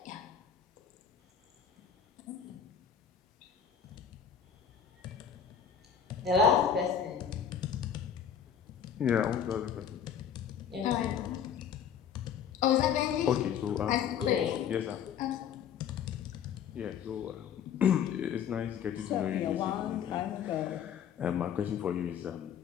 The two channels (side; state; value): right; quieter; 8.1 dB